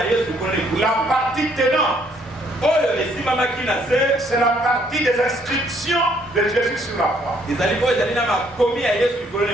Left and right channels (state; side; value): normal; both; correlation 0.66